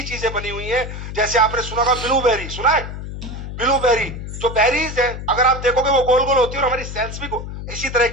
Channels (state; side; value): noise; left; hum, 8 dB below the sound